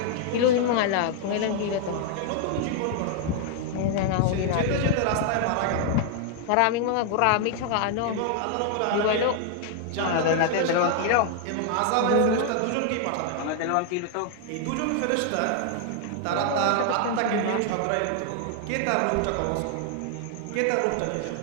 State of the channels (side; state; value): both; different; correlation 0.00